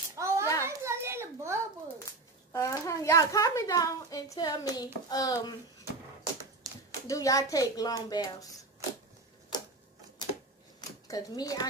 Oh, Yeah. I was a little bubble. Y'all comment down and tell me, do y'all take long baths? Cause me,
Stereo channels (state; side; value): quieter; left; 3.2 dB